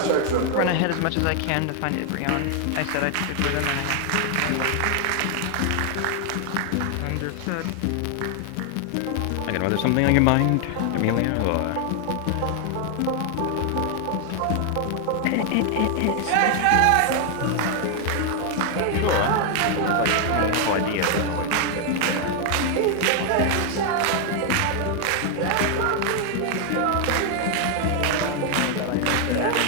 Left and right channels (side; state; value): both; different; correlation 0.00